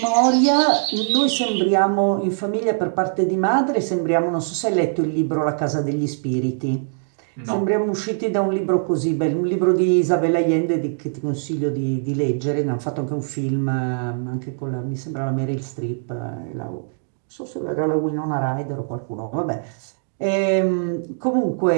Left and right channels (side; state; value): left; silent; digital silence